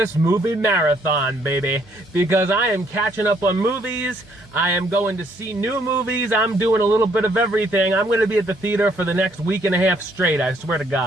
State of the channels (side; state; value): both; normal; correlation 0.67